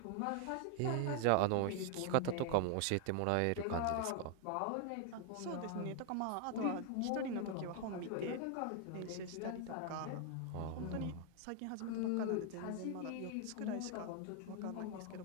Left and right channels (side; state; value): both; different; correlation 0.00